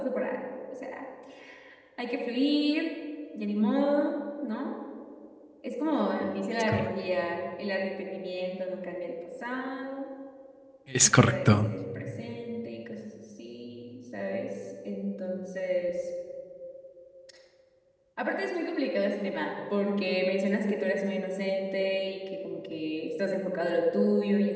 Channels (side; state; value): both; identical; correlation 1.00